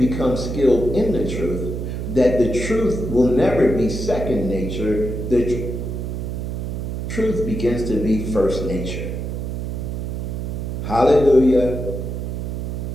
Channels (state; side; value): noise; right; hum, 4 dB below the sound